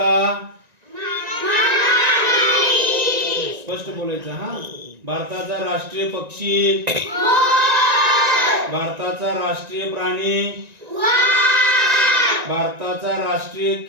स्पष्ट बोलायचं हा भारताचा राष्ट्रीय पक्षी भारताचा राष्ट्रीय प्राणी भारताचा राष्ट्रीय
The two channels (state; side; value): late; left; 1.9 ms